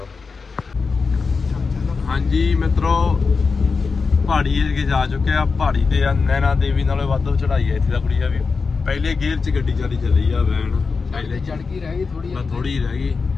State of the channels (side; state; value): right; quieter; 4.7 dB